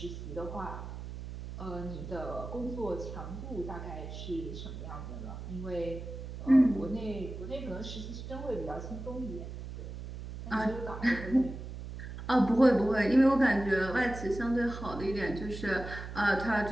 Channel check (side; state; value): right; noise; hum, 9 dB below the sound